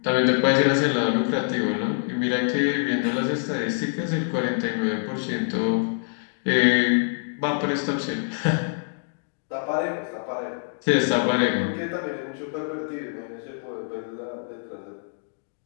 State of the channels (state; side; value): silent; right; digital silence